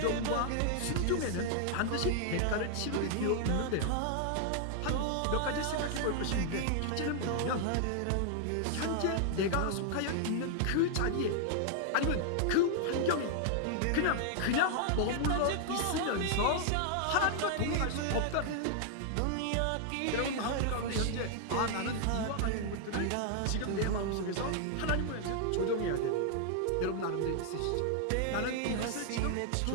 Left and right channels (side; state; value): both; different; correlation 0.00